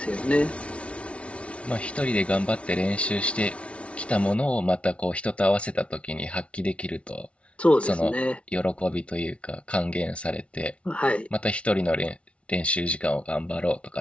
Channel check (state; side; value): late; right; 0.061 ms